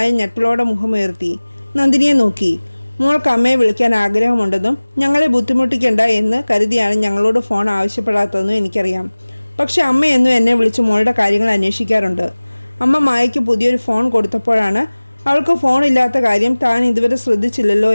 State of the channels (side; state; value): both; inverted; correlation -1.00